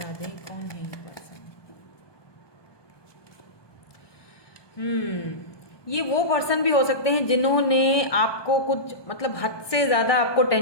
दें कौन है ये पर्सन। ये वो पर्सन भी हो सकते हैं जिन्होंने आपको कुछ मतलब हद से ज़्यादा आपको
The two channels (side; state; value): right; late; 1.2 ms